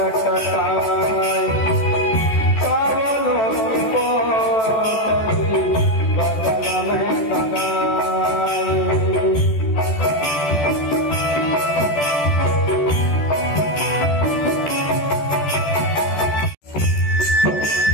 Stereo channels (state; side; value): late; right; 14 ms